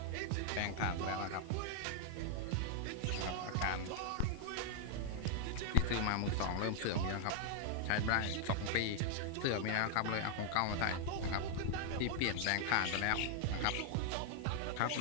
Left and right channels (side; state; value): both; different; correlation -0.01